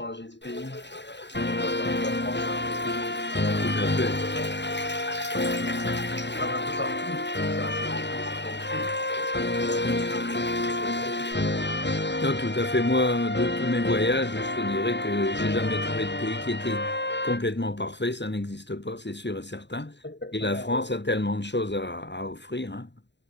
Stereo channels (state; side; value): late; right; 0.51 ms